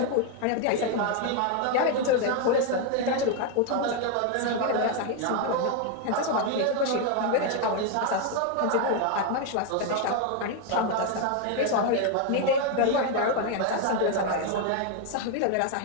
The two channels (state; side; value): different; both; correlation 0.01